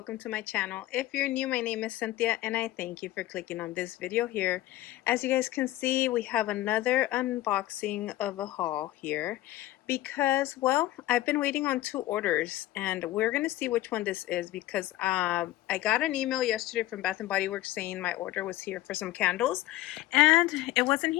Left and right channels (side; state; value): right; quieter; 16.0 dB